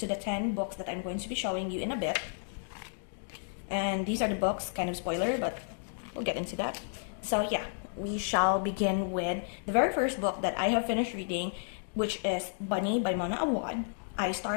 the 10 books that I'm going to be showing you in a bit. And these are the books, kind of spoiler, but we'll get into that. So yeah, we shall begin with the very first book that I have finished reading, which is Bunny by Mona Awad. I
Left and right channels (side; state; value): right; silent; digital silence